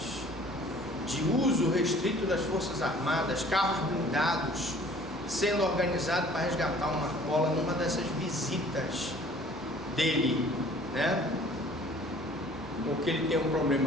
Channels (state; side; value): normal; both; correlation 0.52